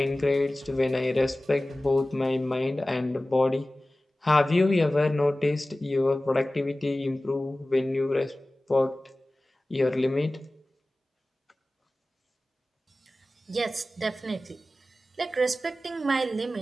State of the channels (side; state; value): both; normal; correlation 0.97